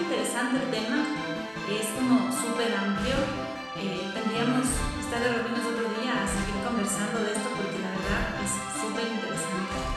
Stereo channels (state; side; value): identical; both; correlation 1.00